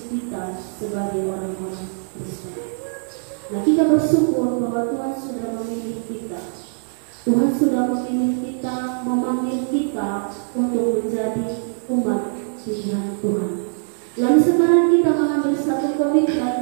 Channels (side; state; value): left; silent; digital silence